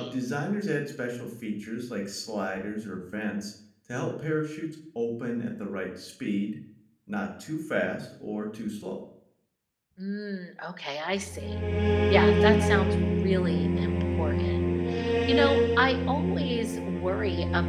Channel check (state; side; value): identical; both; correlation 1.00